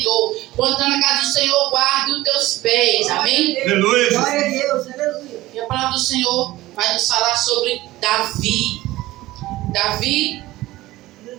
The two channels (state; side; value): quieter; left; 17.4 dB